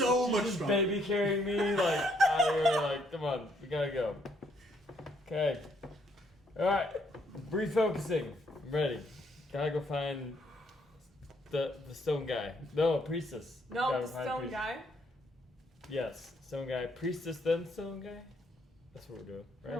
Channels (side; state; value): both; normal; correlation 0.70